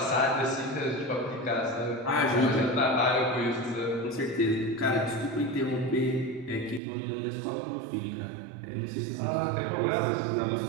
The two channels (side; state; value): left; drops out; at 6.8 s